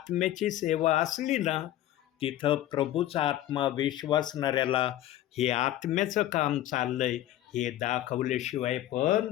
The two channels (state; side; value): quieter; right; 13.4 dB